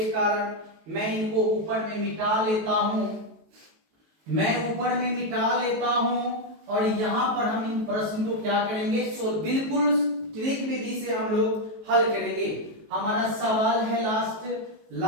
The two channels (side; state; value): left; late; 19 ms